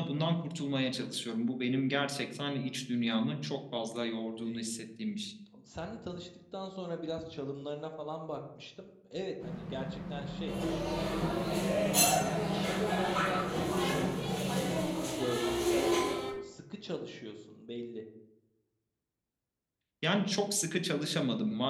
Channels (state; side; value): identical; both; correlation 1.00